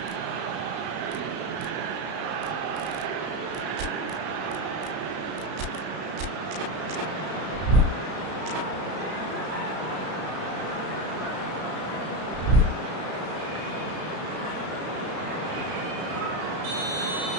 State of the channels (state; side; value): late; left; 33 ms